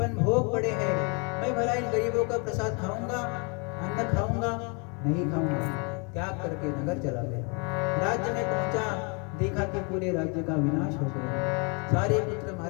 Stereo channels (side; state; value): right; quieter; 34.0 dB